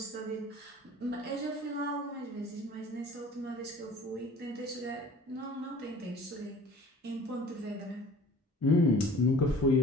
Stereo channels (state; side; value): normal; both; correlation 0.47